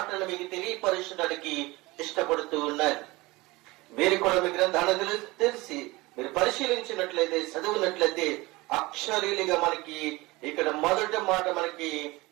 మీకు తెలియపరచడానికి ఇష్టపడుతూ ఉన్నారు. మీరు కూడా మీ గ్రంథాన్ని తెలిసి మీరు పరిశీలించినట్లయితే, చదివినట్లయితే అక్షరీలుగా మనకి ఇక్కడ మొదటి మాట మనకి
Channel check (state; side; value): quieter; left; 21.9 dB